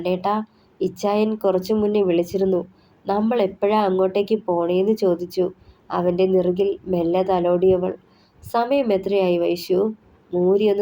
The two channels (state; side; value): identical; both; correlation 1.00